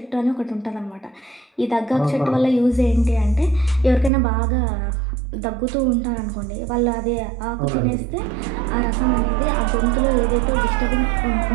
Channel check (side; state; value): left; drops out; at 4.1 s